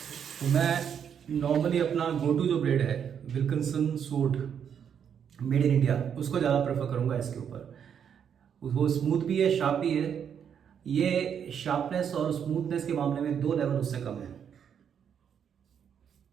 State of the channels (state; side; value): quieter; left; 8.0 dB